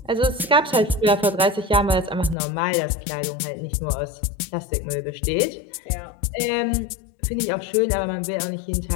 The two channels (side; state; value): right; drops out; at 2.4 s